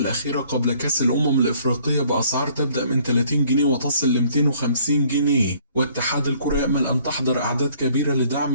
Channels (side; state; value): both; inverted; correlation -0.60